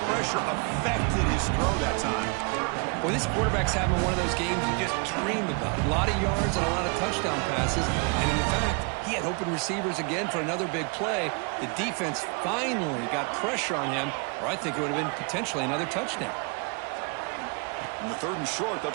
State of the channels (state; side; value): quieter; left; 33.7 dB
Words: pressure affected his throw that time. Well, this quarterback's having one of those games you just dream about. A lot of yards and a lot of touchdown passes. And in fact, he had open receivers again for another big play. The defense finally got pressure on him, or I think it would have been potentially another touchdown. In the third and short, they'll